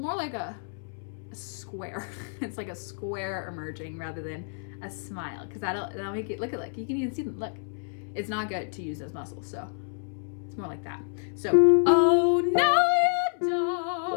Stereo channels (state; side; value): silent; right; 58 dB below the other